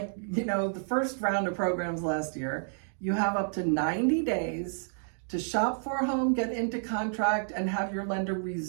first round of programs last year. You have up to 90 days to shop for a home, get into contract, and have your lender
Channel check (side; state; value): left; silent; digital silence